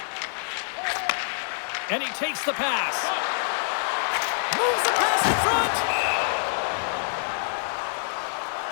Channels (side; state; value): right; silent; digital silence